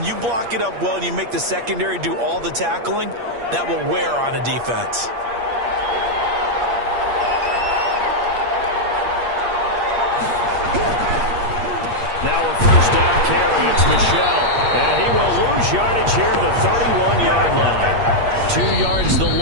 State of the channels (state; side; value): late; left; 8.5 ms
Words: you block it up well and you make the secondary do all the tackling, that will wear on a defense. Now a first down carry. It's Michel. And he will lose yardage here to the 31-yard line. 2 yards the